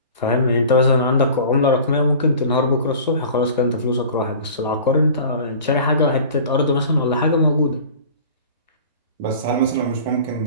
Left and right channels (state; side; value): inverted; both; correlation -0.42